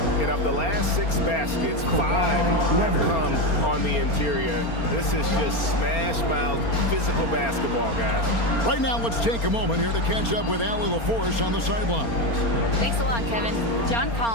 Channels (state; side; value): late; right; 4.3 ms